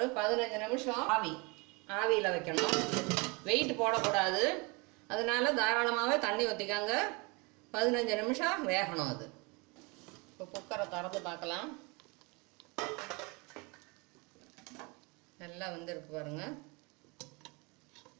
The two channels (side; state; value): left; quieter; 28.6 dB